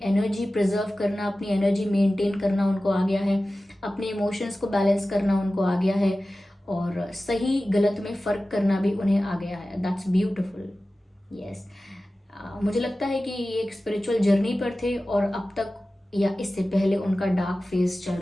एनर्जी प्रिजर्व करना, अपनी एनर्जी मेंटेन करना उनको आ गया है, अपने इमोशंस को बैलेंस करना उनको आ गया है, और सही गलत में फर्क करना भी उन्हें आ गया है। That's beautiful. यस, मुझे लगता है कि ये एक स्पिरिचुअल जर्नी पर थे, और अब तक या इससे पहले उनका डार्क फेज चल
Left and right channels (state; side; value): normal; both; correlation 0.96